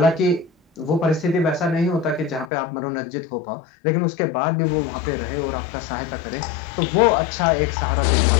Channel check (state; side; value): drops out; right; at 2.5 s